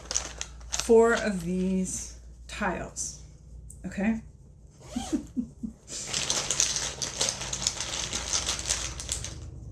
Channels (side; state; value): both; identical; correlation 1.00